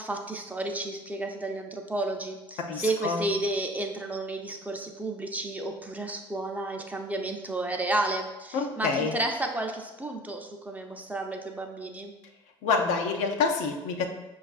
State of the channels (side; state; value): both; normal; correlation 0.40